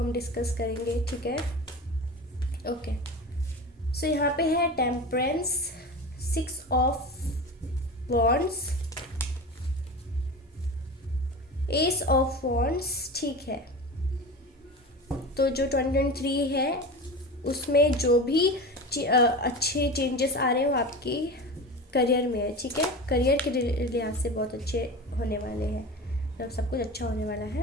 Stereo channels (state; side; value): normal; both; correlation 0.30